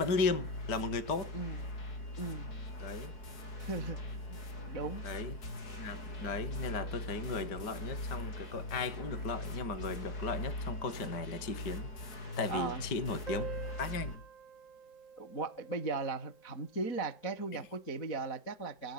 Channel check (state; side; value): late; right; 5.1 ms